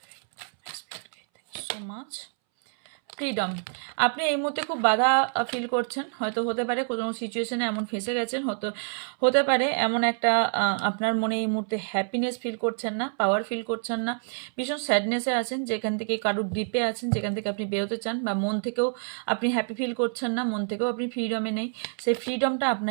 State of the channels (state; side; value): silent; left; 60 dB below the other